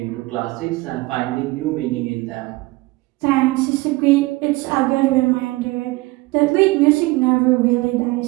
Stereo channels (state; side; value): quieter; left; 21.6 dB